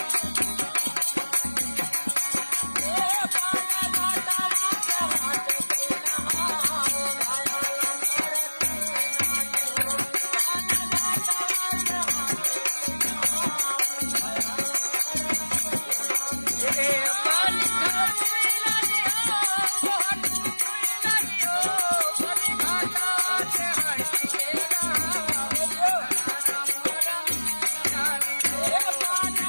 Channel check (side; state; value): both; inverted; correlation -1.00